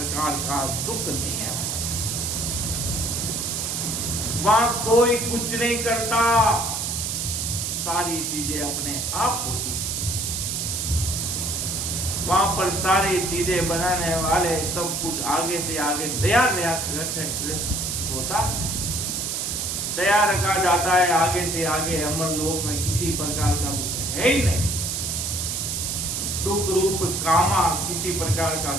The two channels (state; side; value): noise; right; hiss, 1 dB below the sound